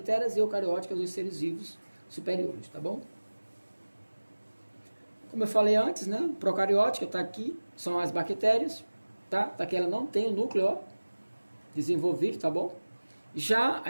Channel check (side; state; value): both; inverted; correlation -1.00